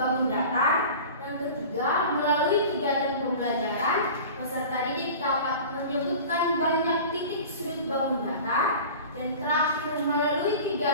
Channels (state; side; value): inverted; both; correlation -0.38